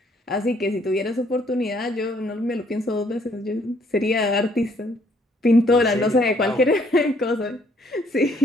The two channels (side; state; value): both; normal; correlation 0.66